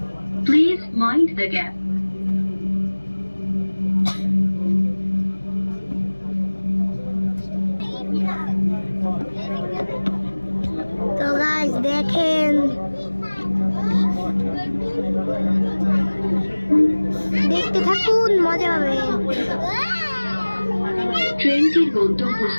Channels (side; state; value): both; inverted; correlation -1.00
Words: Please mind the gap. তো গাইস দেখেন, দেখতে থাকুন, মজা হবে। ট্রেনটির